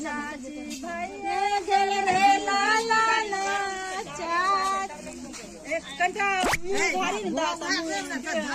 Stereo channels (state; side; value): identical; both; correlation 1.00